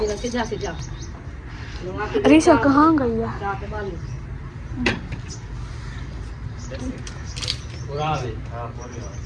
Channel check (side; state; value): both; identical; correlation 1.00